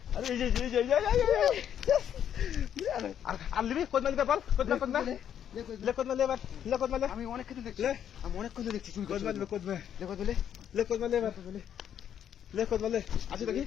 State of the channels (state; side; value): quieter; right; 9.4 dB